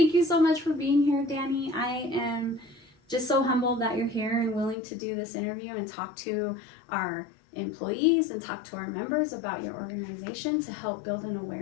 you so much for being here, Danny. I am just so humbled that you're here and willing to do this interview and talk to our employees and talk to our members about your organization to help build an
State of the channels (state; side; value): drops out; right; at 4.8 s